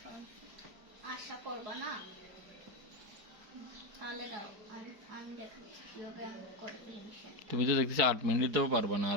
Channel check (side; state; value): left; late; 4.7 ms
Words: আশা করবো না তাহলে দাও আমি দেখাচ্ছি কিভাবে আমি করে দিই মিশন তুমি তো দেখতেছি 8 মিনিটও পারবা না